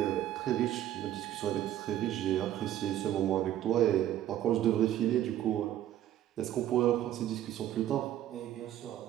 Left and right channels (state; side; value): quieter; left; 12.3 dB